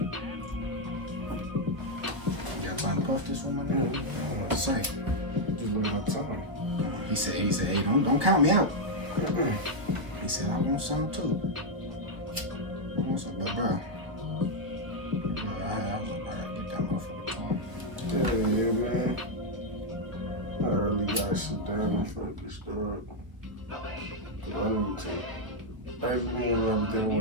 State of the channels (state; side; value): late; left; 1.2 ms